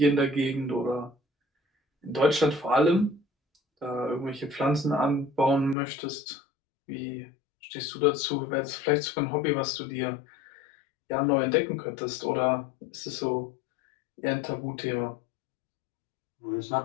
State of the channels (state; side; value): drops out; right; at 5.8 s